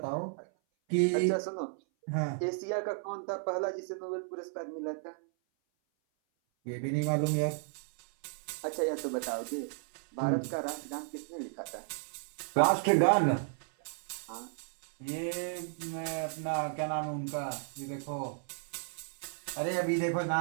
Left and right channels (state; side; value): silent; left; 55 dB below the other